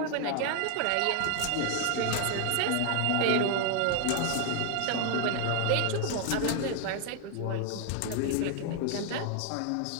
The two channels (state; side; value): different; both; correlation 0.00